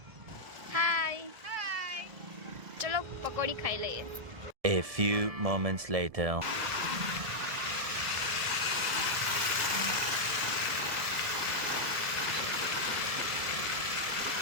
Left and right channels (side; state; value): left; late; 1.7 ms